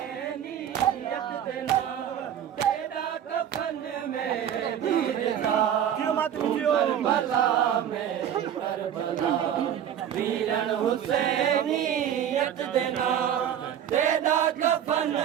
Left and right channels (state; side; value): quieter; left; 9.8 dB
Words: देना तेरा कफन में दीरदा करबला में करबला वीरन हुसैनियत देना तेरा कफन